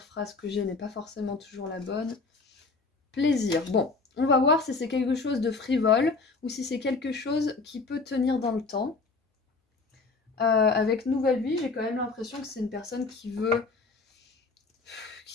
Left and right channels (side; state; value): right; quieter; 4.0 dB